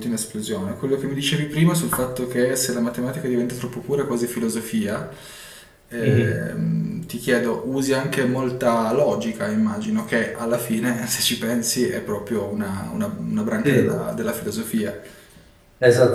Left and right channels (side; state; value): both; identical; correlation 1.00